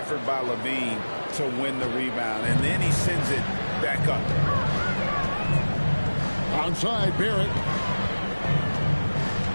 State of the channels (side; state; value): both; inverted; correlation -1.00